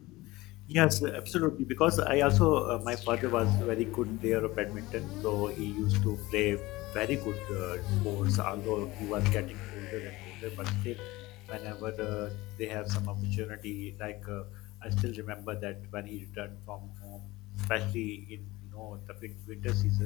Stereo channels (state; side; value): quieter; right; 19.9 dB